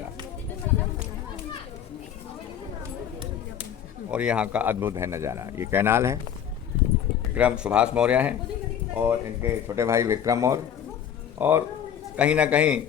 और यहाँ का अद्भुत है नज़ारा। ये कैनाल है, विक्रम सुभाष मौर्य हैं और इनके छोटे भाई विक्रम और कहीं ना कहीं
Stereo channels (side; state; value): right; quieter; 9.0 dB